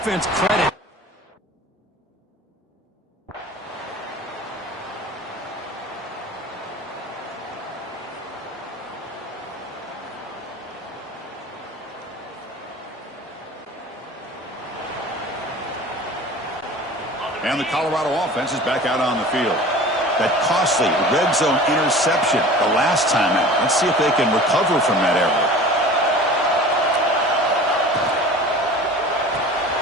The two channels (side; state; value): both; normal; correlation 0.41